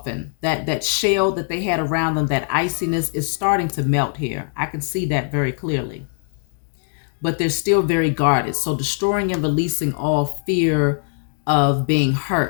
That shell that they had around them, that iciness, is starting to melt here. I can see that very clearly. But they're still very guarded. So destroying and releasing all fear of being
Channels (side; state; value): right; silent; 64 dB below the other